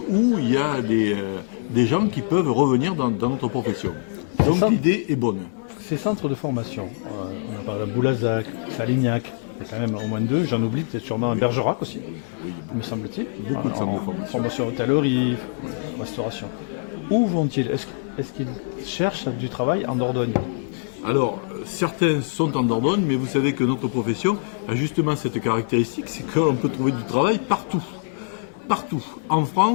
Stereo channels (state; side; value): silent; right; digital silence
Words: où il y a des gens qui peuvent revenir dans notre profession. Donc l'idée est bonne. Ces centres de formation, on a parlé de Boulazac, Salignac, il y a quand même au moins deux, j'en oublie peut-être sûrement un Bergerac aussi, me semble-t-il. Beaucoup de centres de formation. Formation hôtellerie, restauration. Où vont-ils? Est-ce qu'ils cherchent du travail en Dordogne? Alors, certains sont en Dordogne, mais vous savez que notre profession a justement cette caractéristique, c'est qu'on peut trouver du travail partout. Partout, en